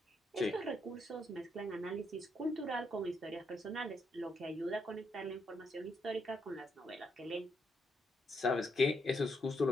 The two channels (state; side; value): normal; both; correlation 0.78